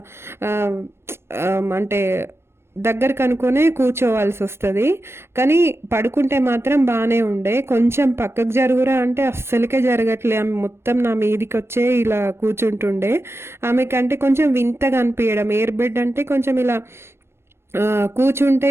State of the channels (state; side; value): late; left; 0.12 ms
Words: అంటే దగ్గరకు అనుకునే కూర్చోవాల్సి వస్తుంది. కానీ పడుకుంటే మాత్రం బాగానే ఉండే. కొంచెం పక్కకు జరుగురా అంటే అస్సలకే జరగట్లే. ఆమె మొత్తం నా మీదికి వచ్చే ఇలా కూర్చుంటుండే. ఆమెకంటే కొంచెం వింతగా అనిపించడం. ఎయిర్ బెడ్ అంటే కొంచెం ఇలా కూర్చుంటే